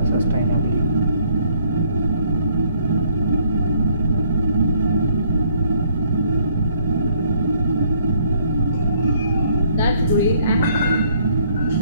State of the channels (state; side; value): inverted; both; correlation -0.65